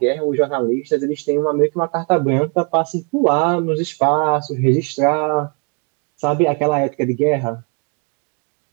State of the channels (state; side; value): quieter; left; 36.3 dB